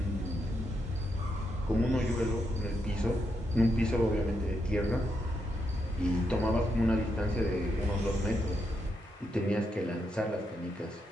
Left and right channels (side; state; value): both; normal; correlation 0.82